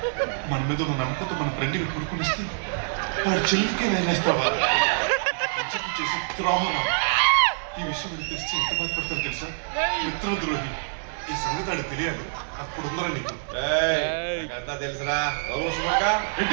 మన మీద ఉన్న నమ్మకంతో మన ఫ్రెండ్ ఇక్కడ పడుకుని వస్తే వాడు చెల్లికే నేనేస్తావా? చేసే ద్రోహం. ఈ విషయం తెలిసి ఎంత బాధపడతారు తెలుసా? మిత్రద్రోహి. ఈ సంగతి ఆడు తెలియాలి. అప్పుడు ఉందరా నీకు తెలుసురా.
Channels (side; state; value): left; silent; digital silence